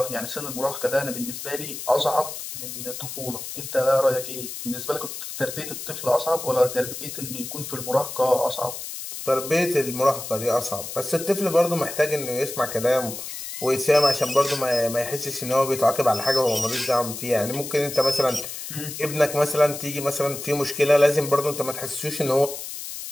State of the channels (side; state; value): left; noise; hiss, 8 dB below the sound